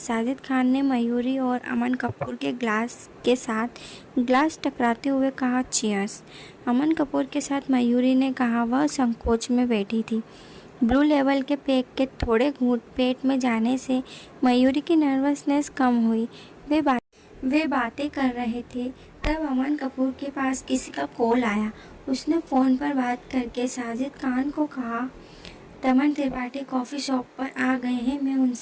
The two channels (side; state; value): both; identical; correlation 1.00